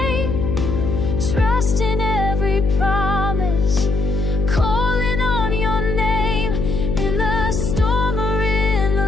trust in every promise, calling on your name. In the storm or in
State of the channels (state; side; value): noise; left; hum, 1 dB below the sound